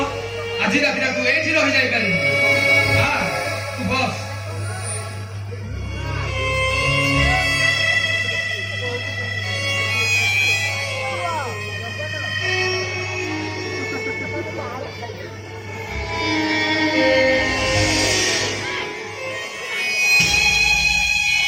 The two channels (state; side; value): identical; both; correlation 1.00